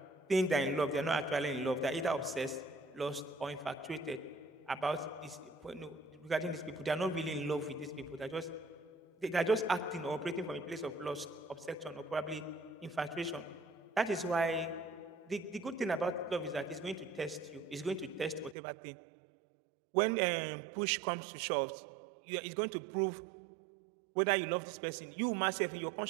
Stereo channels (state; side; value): drops out; left; at 18.6 s